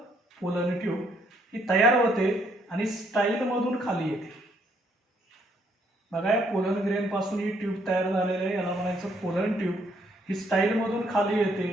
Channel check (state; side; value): normal; both; correlation 0.70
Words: Pollen tube. ही तयार होते आणि स्टाईल मधून खाली येते. बघा, पोलन ग्रेन पासून ही ट्यूब तयार झालेली आहे, याला म्हणायचं पोलन ट्यूब. ही स्टाईल मधून खाली येते,